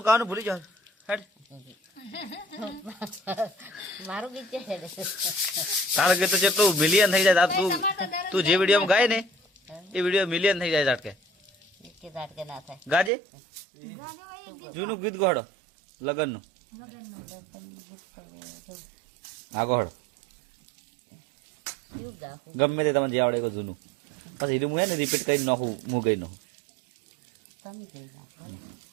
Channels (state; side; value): drops out; left; at 13.1 s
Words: કાવાનું ભૂલી જાવ હેડ। મારું ગીત છે તારું ગીત તો જેટલું મિલિયન થઈ જાય તું જે વિડીયોમાં ગાય ને એ વિડીયો મિલિયન થઈ જાય ઝાટકે ના થાય। ગાજે જૂનું ગીત ગોહડો લગનનું આ ગોહડો ગમે તે તમે જે આવડે એ જૂનું પછી એનું હું ને રિપીટ કરી નાખું હું ગઈ નાખું।